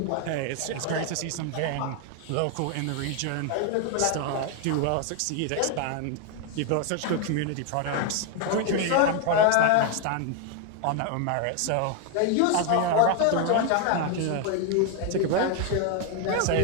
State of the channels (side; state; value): both; different; correlation 0.01